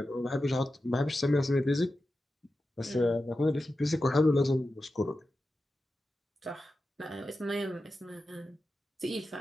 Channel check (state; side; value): normal; both; correlation 0.92